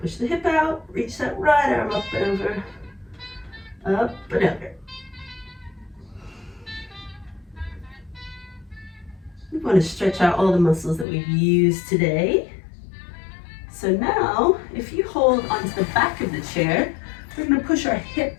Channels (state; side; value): drops out; right; at 11.1 s